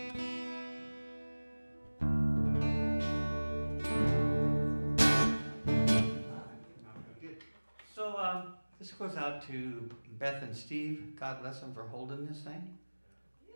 Good. So this goes out to Beth and Steve. God bless them for holding this thing.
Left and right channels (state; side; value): inverted; both; correlation -1.00